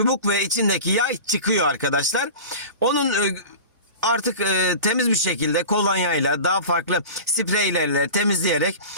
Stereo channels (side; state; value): both; inverted; correlation -0.34